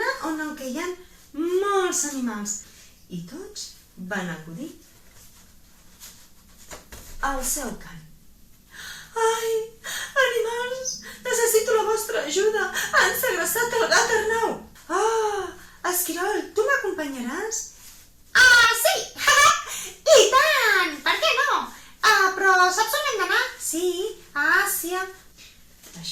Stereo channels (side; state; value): both; identical; correlation 1.00